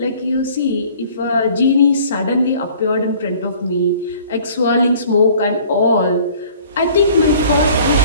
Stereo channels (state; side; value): inverted; both; correlation -0.52